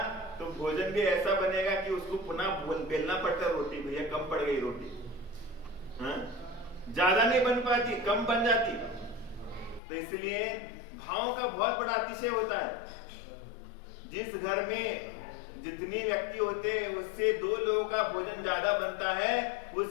तो भोजन भी ऐसा बनेगा कि उसको पुनः बेलना पड़ता है रोटी, भैया कम पड़ गई रोटी। हाँ? ज्यादा नहीं बन पाती, कम बन जाती। तो इसलिए भाव का बहुत बड़ा अतिशय होता है। जिस घर में जितने व्यक्ति होते हैं उससे 2 लोगों का भोजन ज्यादा बनता है, उस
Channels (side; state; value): right; drops out; at 9.8 s